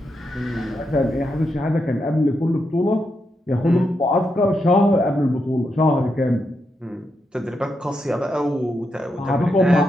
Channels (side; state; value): both; normal; correlation 0.83